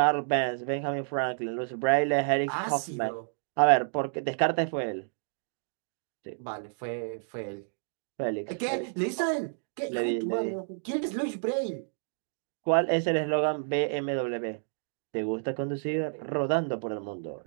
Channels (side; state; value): left; silent; digital silence